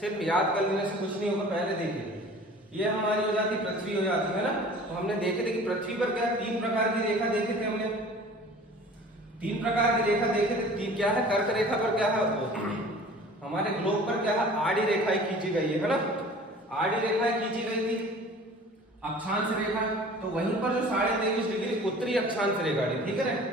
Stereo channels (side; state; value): both; normal; correlation 0.45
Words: याद कर लेने से कुछ नहीं होगा। पहले देखिए, ये हमारी हो जाती पृथ्वी हो जाती है ना। तो हमने देखे थे कि पृथ्वी पर क्या तीन प्रकार की रेखा देखे थे हमने, तीन प्रकार की रेखा देखे थे। तीन क्या है, कर्क रेखा पर क्या है हमारे ग्लोब पर क्या है आड़ी रेखाएं खींची गई है ना। आड़ी रेखाएं खींची गई थी, अक्षांश रेखा। तो वहीं पर जो 23.5 डिग्री उत्तरी अक्षांश रेखा थी, ठीक है ना,